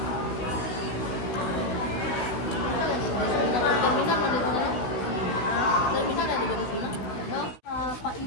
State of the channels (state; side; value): late; right; 16 ms